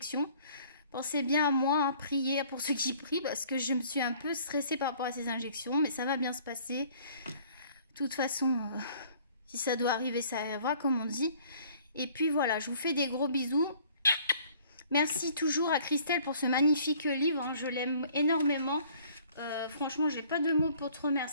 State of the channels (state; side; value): inverted; both; correlation -0.56